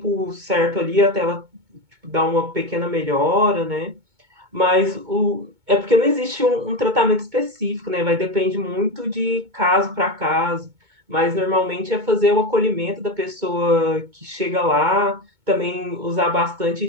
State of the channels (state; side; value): late; left; 2.2 ms